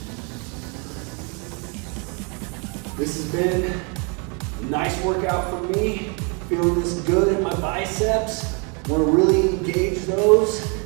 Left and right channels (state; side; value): quieter; left; 35.0 dB